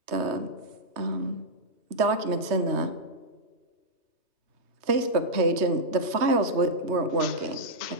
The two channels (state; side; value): late; left; 3.2 ms